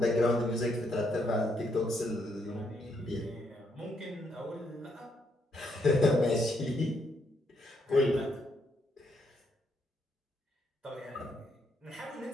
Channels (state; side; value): normal; both; correlation 0.75